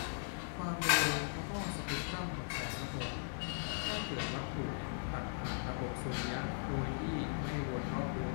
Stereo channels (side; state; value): right; silent; digital silence